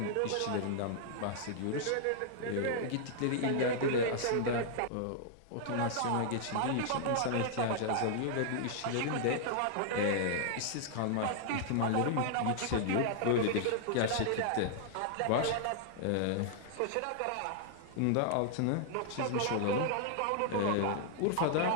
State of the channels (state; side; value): different; both; correlation -0.01